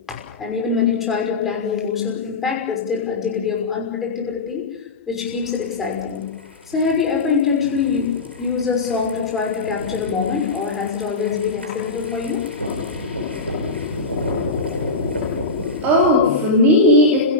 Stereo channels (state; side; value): quieter; right; 3.2 dB